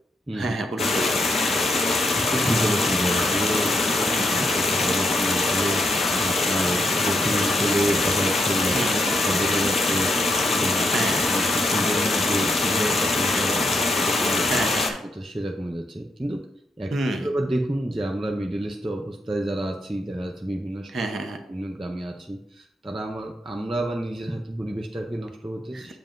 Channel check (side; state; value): both; normal; correlation 0.79